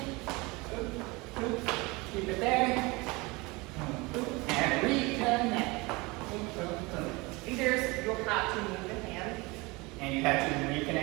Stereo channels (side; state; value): left; quieter; 24.7 dB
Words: keep it there, and reconnect. leaders, you'll have to move the hand. And you have to